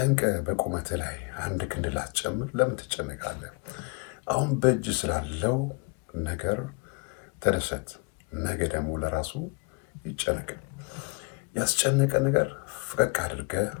በቁመት ላይ አንድ ክንድ ላትጨምር ለምን ትጨነቃለህ? አሁን በእጅ ስላለው ነገር ተደሰት። ነገ ደግሞ ለራሱ ይጨነቅ። ያስጨነቀ ነገር ፈቀቅ አድርገ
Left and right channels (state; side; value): quieter; right; 30.4 dB